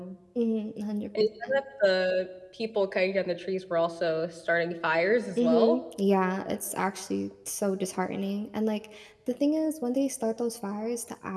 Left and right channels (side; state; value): both; identical; correlation 1.00